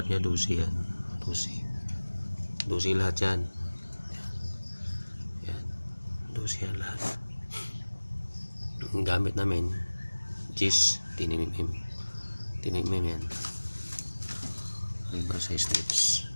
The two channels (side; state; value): both; inverted; correlation -1.00